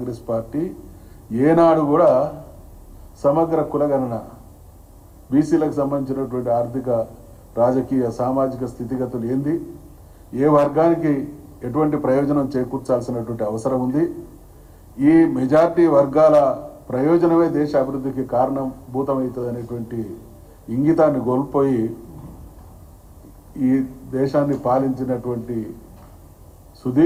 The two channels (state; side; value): identical; both; correlation 1.00